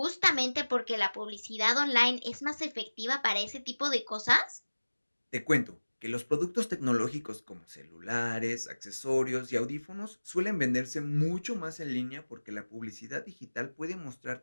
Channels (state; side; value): inverted; both; correlation -1.00